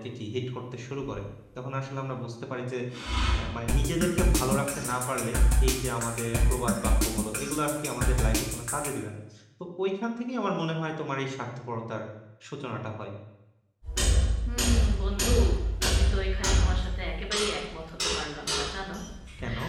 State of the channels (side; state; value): both; identical; correlation 1.00